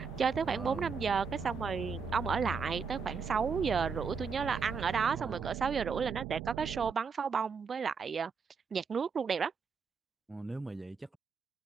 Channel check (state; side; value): quieter; left; 5.6 dB